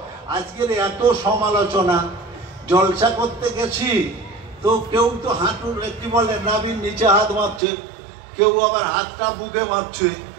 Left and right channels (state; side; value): drops out; left; at 7.6 s